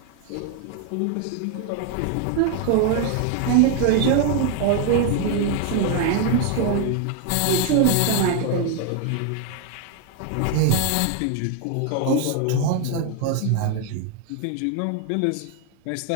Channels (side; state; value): both; different; correlation 0.01